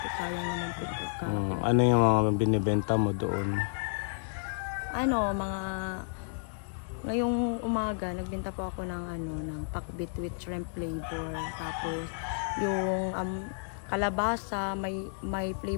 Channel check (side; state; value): right; silent; 57 dB below the other